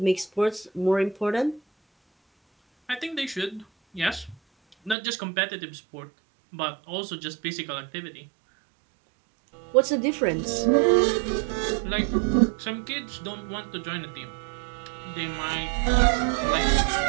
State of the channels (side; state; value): left; drops out; at 5.0 s